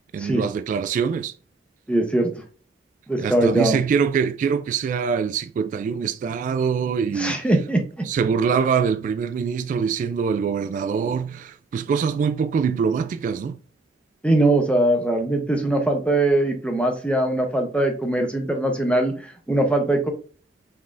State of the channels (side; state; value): left; quieter; 3.2 dB